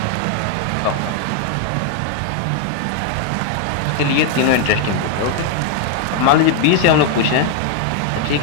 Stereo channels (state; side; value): different; both; correlation 0.00